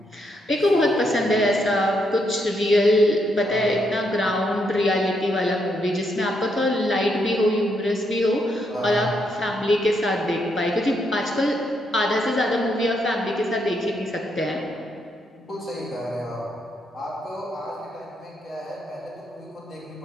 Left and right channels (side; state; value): both; normal; correlation 0.77